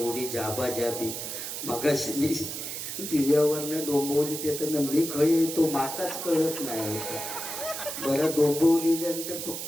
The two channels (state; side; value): noise; right; hiss, 6 dB below the sound